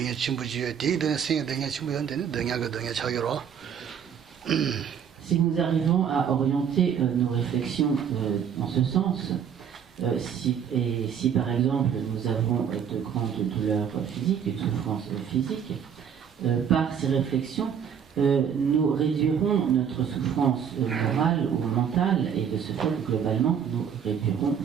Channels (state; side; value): quieter; left; 8.0 dB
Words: Si nous arrivons à orienter nos réflexions en ce sens, si par exemple nous avons de grandes douleurs physiques, une souffrance physique, par ces réflexions, nous réduirons notre souffrance morale ou mentale, et de ce fait, globalement, nous réduirons